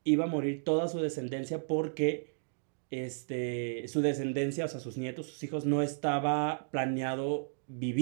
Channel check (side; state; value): left; silent; digital silence